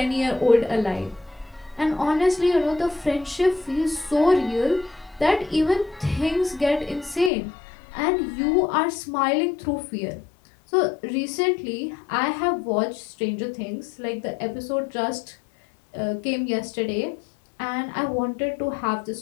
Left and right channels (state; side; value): drops out; right; at 7.3 s